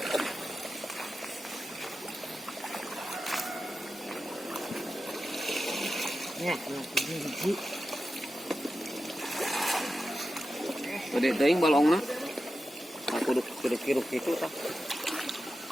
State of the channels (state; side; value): normal; both; correlation 0.91